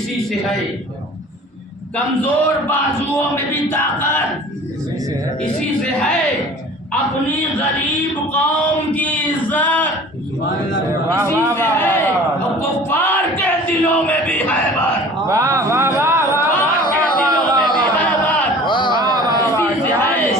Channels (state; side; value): normal; both; correlation 0.45